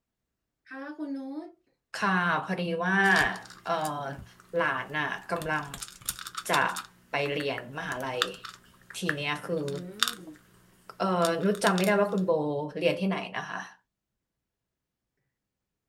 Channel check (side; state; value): both; identical; correlation 1.00